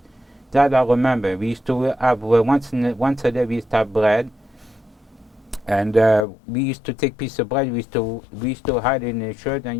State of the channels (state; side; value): drops out; right; at 6.2 s